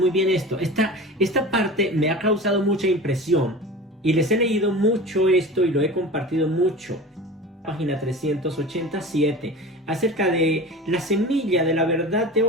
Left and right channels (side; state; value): both; normal; correlation 0.34